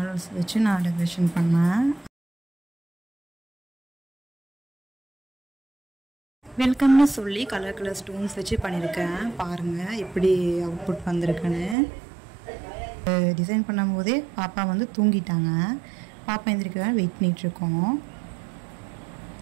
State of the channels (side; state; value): left; drops out; at 11.8 s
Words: வச்சு நான் டெக்கரேஷன் பண்ணேன். வெல்கம்னு சொல்லி கலர் கலர் ஸ்டோன்ஸ் வச்சு பண்ணியிருக்கேன். பாருங்கள் எப்படி அவுட்புட் வந்திருக்குன்னு. டிசைன் பண்ணும்போதே பாப்பா வந்து தூங்கிட்டாங்க. பாப்பா எந்திரிக்க வெயிட் பண்ணிகிட்ருக்கோம்.